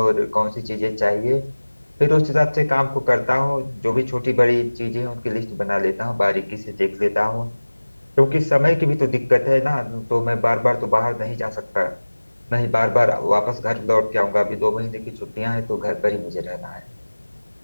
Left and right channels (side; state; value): both; inverted; correlation -1.00